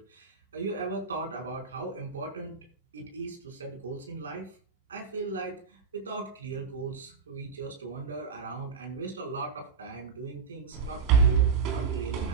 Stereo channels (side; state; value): left; quieter; 5.6 dB